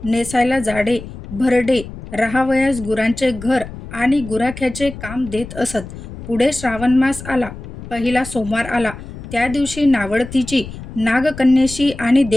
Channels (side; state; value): left; noise; rumble, 13 dB below the sound